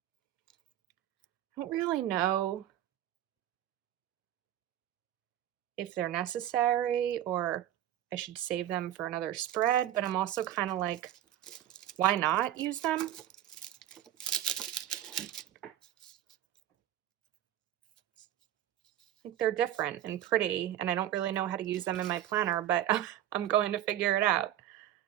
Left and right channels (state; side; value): quieter; left; 12.0 dB